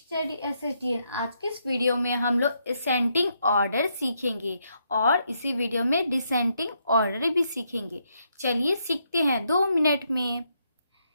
SSTN. आज के इस वीडियो में हम लोग असेंडिंग ऑर्डर सीखेंगे और इसी वीडियो में डिसेंडिंग ऑर्डर भी सीखेंगे। चलिए सीखते हैं 2 मिनट में।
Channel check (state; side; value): inverted; both; correlation -0.77